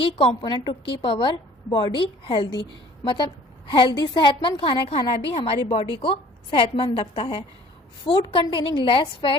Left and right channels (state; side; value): normal; both; correlation 0.52